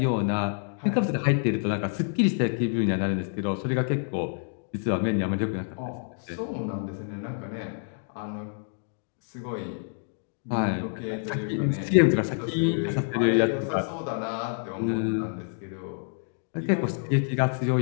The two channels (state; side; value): silent; right; digital silence